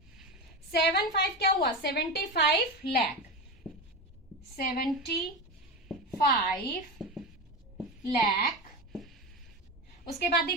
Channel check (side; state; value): both; normal; correlation 0.20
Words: 75 क्या हुआ 75 लाख, 75 लाख। उसके बाद